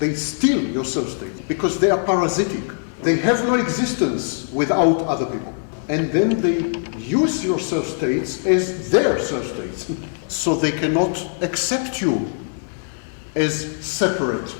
steal your self-states because they are parasitic. They have no existence without other people. And then they use your self-states as their self-states. So they cannot accept you as separate.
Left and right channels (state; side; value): silent; right; digital silence